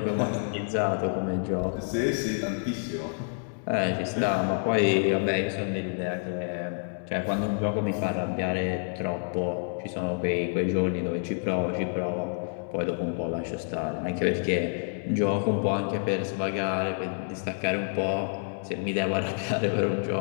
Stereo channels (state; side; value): silent; right; 59 dB below the other